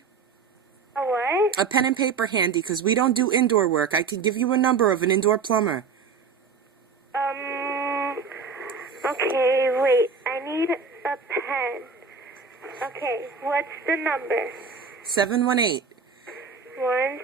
A what? A pen and paper handy, because we don't do indoor work. I can give you a number of an indoor plumber. Okay, wait. I need a pen. Okay, what's the number? 718.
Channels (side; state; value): left; quieter; 5.3 dB